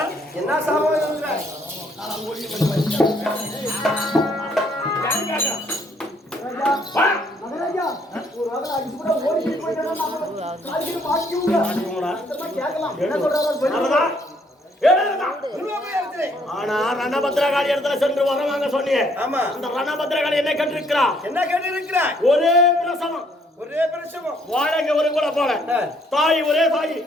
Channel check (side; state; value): both; normal; correlation 0.67